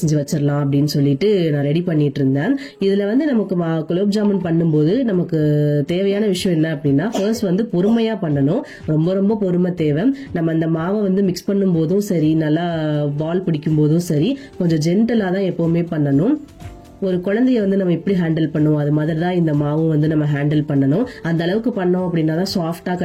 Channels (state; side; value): identical; both; correlation 1.00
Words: வச்சிடலாம் அப்படின்னு சொல்லிட்டு நான் ரெடி பண்ணிட்டு இருந்தேன். இதுல வந்து நமக்கு குலோப் ஜாமுன் பண்ணும்போது நமக்கு தேவையான விஷயம் என்ன அப்படின்னா, ஃபர்ஸ்ட் வந்து பொறுமையா பண்ணணும். ரொம்ப ரொம்ப பொறுமை தேவை. நம்ம அந்த மாவை வந்து மிக்ஸ் பண்ணும் போதும் சரி, நல்லா பால் பிடிக்கும் போதும் சரி, கொஞ்சம் ஜென்டலா தான் எப்பவுமே பண்ணணும். ஒரு குழந்தைய வந்து நம்ம எப்படி ஹேண்டில் பண்ணுவோம், அது மாதிரி தான் இந்த மாவும் வந்து நம்ம ஹேண்டில் பண்ணணும். அந்த அளவுக்கு பண்ணோம் அப்படின்னா தான் சாஃப்டா